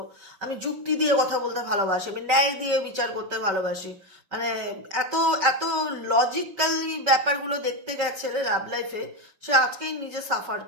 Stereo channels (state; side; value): late; left; 5.2 ms